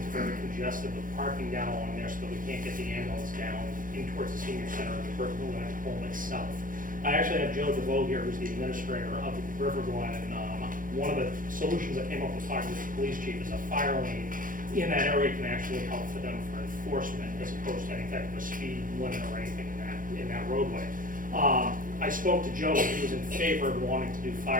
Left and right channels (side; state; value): left; late; 0.40 ms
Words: very congested with parking down along there so that we can't get the ambulance down in towards the senior center of the River Glen home itself. I actually have Joe DeVoe here, who's the administrator of the River Glen, and one of the solutions I came up with talking with the police chief is a fire lane in that area can actually help for them for enforcement as opposed to any type of a speed limit or anything in that roadway. I spoke to Joe, and he was in favor of wanting to do